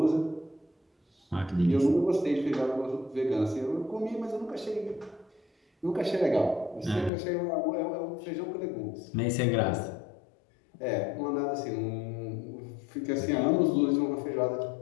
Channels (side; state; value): right; drops out; at 7.1 s